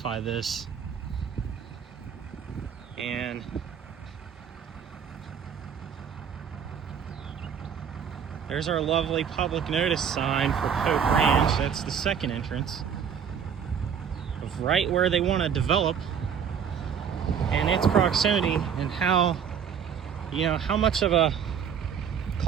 this. And there's our lovely public notice sign for Pope Ranch. That's the second entrance of right where they want to develop, and its proximity, and how, you know, how much of a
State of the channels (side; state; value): left; quieter; 7.6 dB